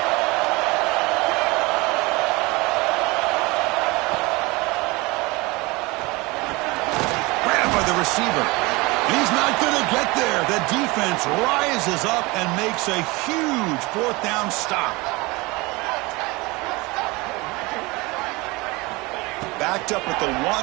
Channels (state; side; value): quieter; left; 23.9 dB